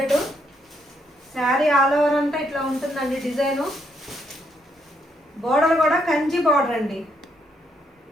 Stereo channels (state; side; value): normal; both; correlation 0.75